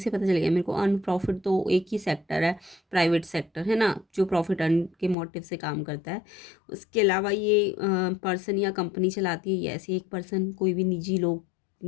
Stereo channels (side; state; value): right; drops out; at 5.2 s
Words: पता चल गया मेरे को अर्न प्रॉफिट तो एक ही सेक्टर है, प्राइवेट सेक्टर है ना, जो प्रॉफिट अर्न के मोटिव से काम करता है। उसके अलावा ये पर्सन या कंपनी चलाती है, ये ऐसे एक पर्सन, कोई भी निजी लोग,